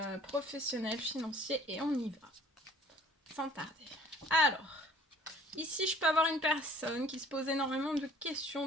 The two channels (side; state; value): both; normal; correlation 0.52